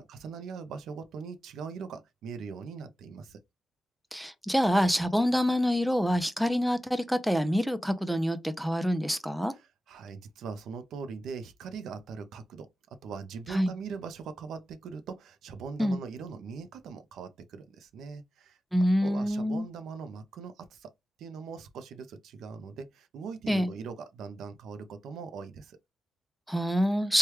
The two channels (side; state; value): both; normal; correlation 0.94